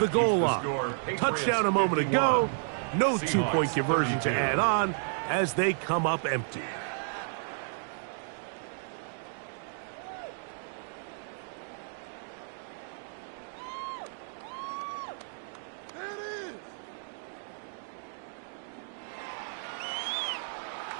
goal line. Touchdown a moment ago. No 2-point conversion to add on as they come up empty.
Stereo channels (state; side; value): silent; left; digital silence